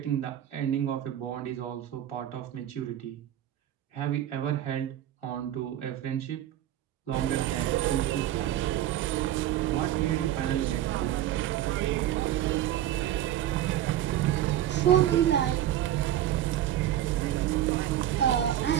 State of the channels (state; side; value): quieter; left; 12.3 dB